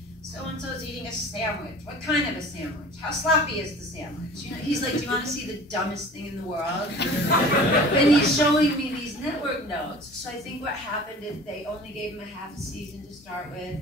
so-and-so's eating a sandwich. What kind of a sandwich? How sloppy is the sandwich? You know, he's like, do you want to see the dumbest thing in the world? And he's showing me these network notes. So I think what happened is they only gave him a half a season to start with,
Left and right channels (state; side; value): normal; both; correlation 0.42